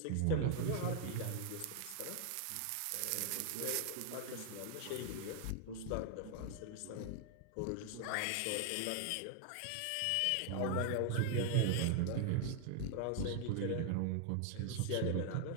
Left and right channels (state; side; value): different; both; correlation 0.00